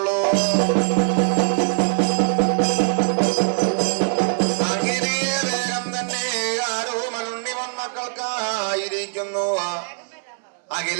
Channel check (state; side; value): silent; left; 64 dB below the other